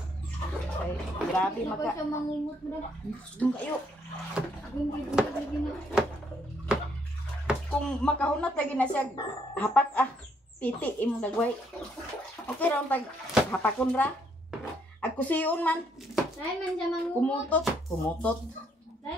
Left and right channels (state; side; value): normal; both; correlation 0.70